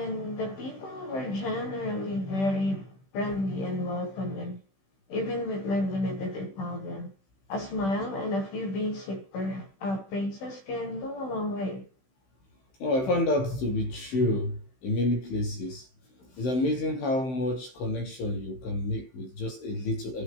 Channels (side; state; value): right; late; 15 ms